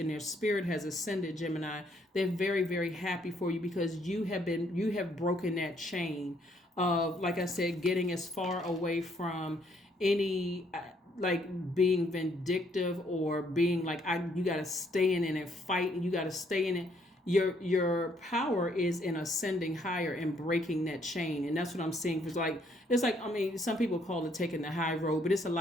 their spirit has ascended, Gemini. They're very, very happy for you because you have broken that chain of, like I said, getting as far away from any like being vindictive or being like, you got to stay in it and fight, and you got to stay in it. Your power is in ascending higher and breaking that chain. And that's what I'm seeing. It's like, I mean, some people call it taking the high road, but it's a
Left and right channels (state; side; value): normal; both; correlation 0.68